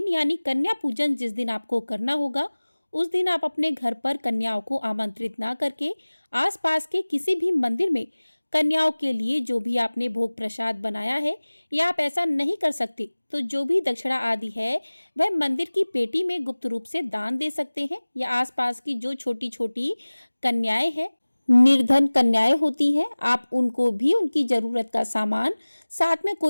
यानी कन्या पूजन जिस दिन आपको करना होगा, उस दिन आप अपने घर पर कन्याओं को आमंत्रित ना करके आसपास के किसी भी मंदिर में कन्याओं के लिए जो भी आपने भोग प्रसाद बनाया है, या आप ऐसा नहीं कर सकते तो जो भी दक्षिणा आदि है वह मंदिर की पेटी में गुप्त रूप से दान दे सकते हैं, या आसपास की जो छोटी छोटी कन्याएं हैं, निर्धन कन्याएं होती हैं, आप उनको भी उनकी जरूरत का सामान साथ में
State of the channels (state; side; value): inverted; both; correlation -1.00